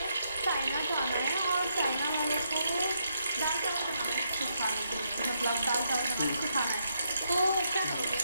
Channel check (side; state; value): both; inverted; correlation -0.78